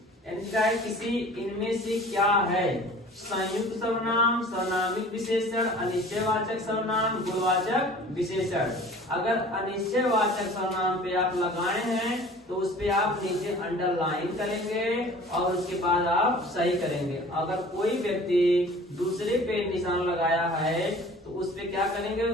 इनमें से क्या है, संयुक्त सर्वनाम, सर्वनामिक विशेषण, अनिश्चयवाचक सर्वनाम, गुणवाचक विशेषण। अगर अनिश्चयवाचक सर्वनाम पे आप लगाए हैं तो उस पे आप नीचे अंडरलाइन करेंगे और उसके बाद आप सही करेंगे। अगर कोई व्यक्ति दूसरे पे निशान लगाया है तो उस पे क्या करेंगे,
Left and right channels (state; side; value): normal; both; correlation 0.46